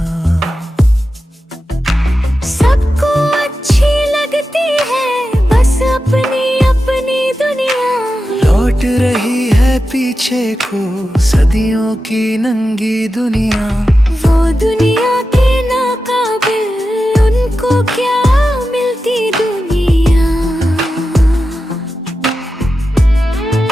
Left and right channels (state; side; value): normal; both; correlation 0.91